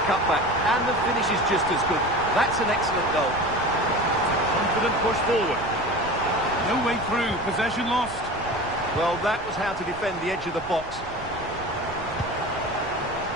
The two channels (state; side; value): noise; left; rumble, 19 dB below the sound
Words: cutback, and the finish is just as good. That's an excellent goal. Confident push forward. No way through, possession lost. Well, that was how to defend the edge of the box.